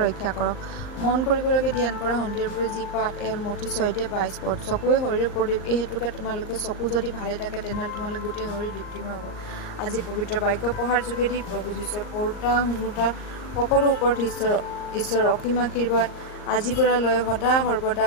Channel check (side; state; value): right; late; 38 ms